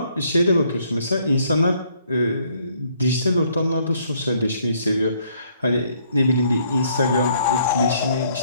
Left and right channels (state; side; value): inverted; both; correlation -0.66